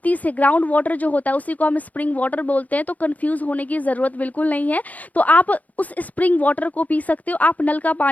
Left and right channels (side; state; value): right; late; 0.076 ms